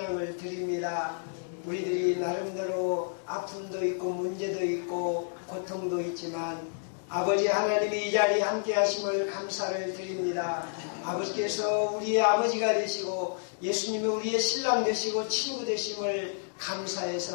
드립니다. 우리들이 나름대로 아픔도 있고 문제도 있고 고통도 있지만 아버지 하나님이 이 자리에 함께 하심을 감사를 드립니다. 아버지께서 우리의 아버지가 되시고 예수님이 우리의 신랑 되시고 친구 되심을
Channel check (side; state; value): right; silent; digital silence